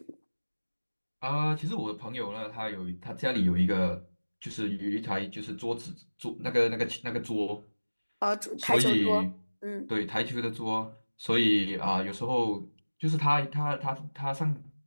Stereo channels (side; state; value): both; inverted; correlation -1.00